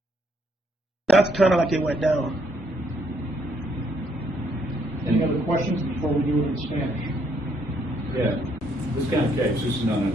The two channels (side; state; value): both; normal; correlation 0.70